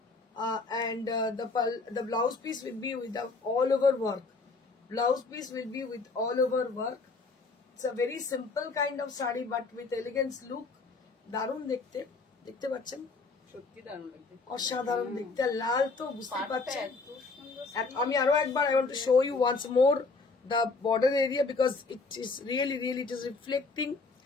and the blouse piece will be with the all over work. Blouse piece will be with all over work. It's a very simple kind of saree but with elegance look. দারুণ দেখতে, দেখতে পাচ্ছেন, সত্যি দারুণ লাগছে, অসাধারণ দেখতে। লাল তো বুঝতে পারছেন। আমি আরো একবার I want to show you once more the border area because it is really it is reflecting,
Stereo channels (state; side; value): quieter; right; 3.9 dB